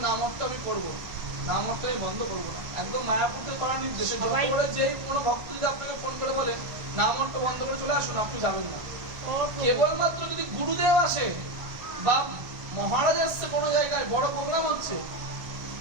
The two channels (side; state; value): left; late; 1.4 ms